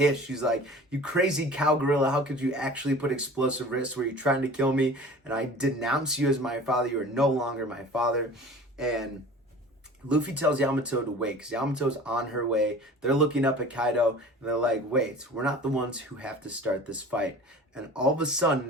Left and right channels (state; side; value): normal; both; correlation 0.42